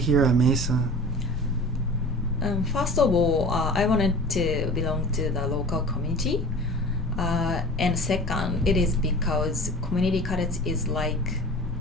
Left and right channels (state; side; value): normal; both; correlation 0.39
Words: at Mesa? First of all, I wanted to belong to the local community. And second, it is because community college is like